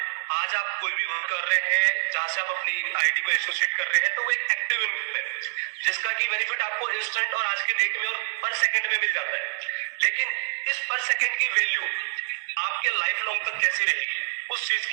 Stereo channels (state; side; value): silent; left; digital silence